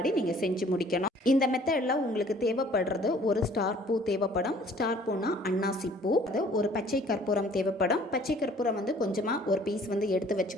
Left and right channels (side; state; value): both; normal; correlation 0.55